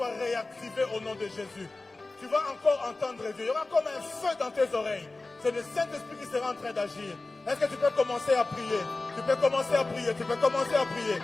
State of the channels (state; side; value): quieter; right; 3.3 dB